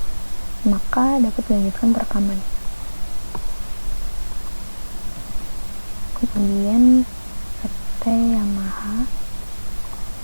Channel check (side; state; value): both; inverted; correlation -1.00